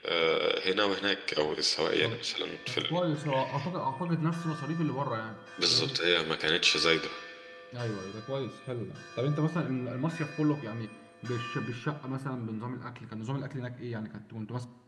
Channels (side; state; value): both; identical; correlation 1.00